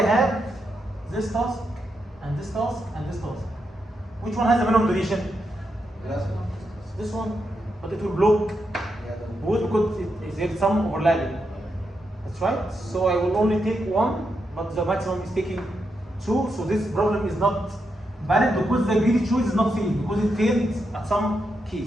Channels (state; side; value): normal; both; correlation 0.84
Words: have this task, and this task, and this task? Which one has the minimum duration? This one, but it will block both because there is some overlapping. That's right. So I will only take one, but the maximum is taking 2. So this problem is not valid because the greedy choice is not safe, because it failed at some